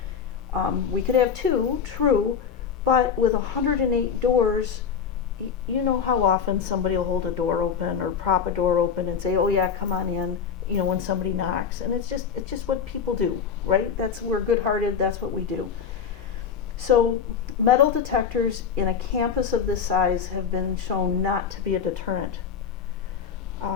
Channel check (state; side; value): quieter; right; 6.8 dB